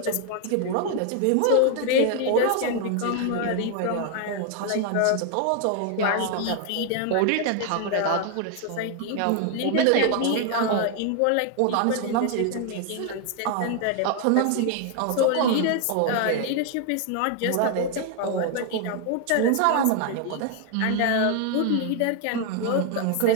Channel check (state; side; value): different; both; correlation 0.00